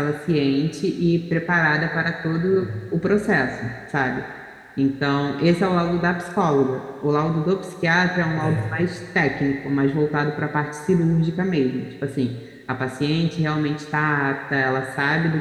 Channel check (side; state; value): both; identical; correlation 1.00